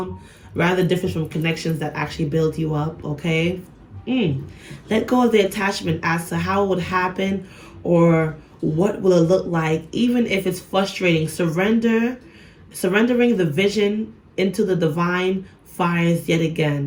rather different from connections that actually build you up? Okay, let go of the attachment as to how it would happen or what will it look like, even if it's frustrating. Surrendering the vision into the divine fires yet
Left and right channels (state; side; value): identical; both; correlation 1.00